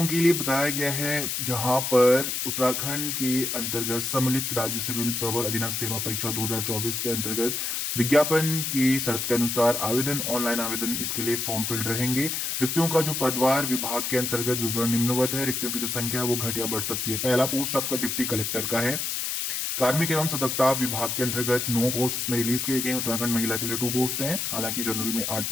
के लिए बताया गया है यहाँ पर उत्तराखंड के अंतर्गत सम्मिलित राज्य सिविल प्रवर अधीनस्थ सेवा परीक्षा 2024 के अंतर्गत विज्ञापन की शर्त के अनुसार आवेदन, ऑनलाइन आवेदन इसके लिए फॉर्म फिल्ड रहेंगे। रिक्तियों का जो पदवार विभाग के अंतर्गत विवरण निम्नवत है। रिक्तियों की जो संख्या है वो घट या बढ़ सकती है। पहला पोस्ट आपका डिप्टी कलेक्टर का है। कार्मिक एवं सतर्कता विभाग के अंतर्गत 9 पोस्ट इसमें रिलीज किए गए। उत्तराखंड महिला के लिए 2 पोस्ट हैं, हालांकि जनरल में 8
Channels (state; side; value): noise; left; hiss, 1 dB below the sound